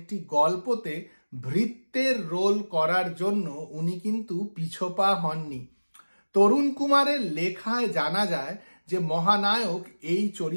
গল্পতে ভৃত্যের রোল করার জন্য উনি কিন্তু পিছপা হননি। তরুণ কুমারের লেখায় জানা যায় যে মহানায়ক এই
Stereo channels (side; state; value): both; inverted; correlation -1.00